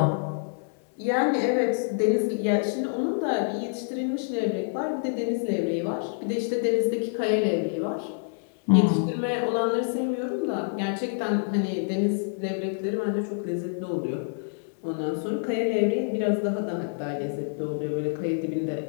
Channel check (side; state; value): right; silent; digital silence